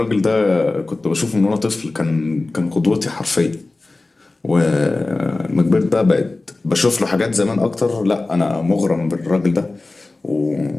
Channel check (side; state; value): right; quieter; 3.2 dB